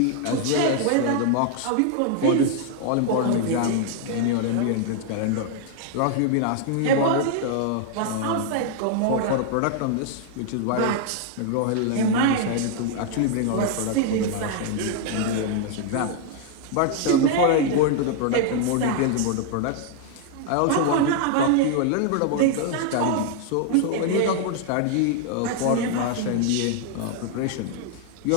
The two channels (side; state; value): both; different; correlation 0.00